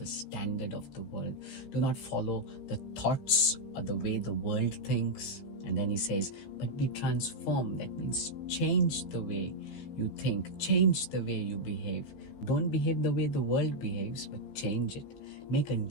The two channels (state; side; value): late; right; 15 ms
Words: standard of the world. Do not follow the thoughts or the way the world thinks. And then he says, but be transformed. That means change the way you think, change the way you behave. Don't behave the way the world behaves, but change it. Make a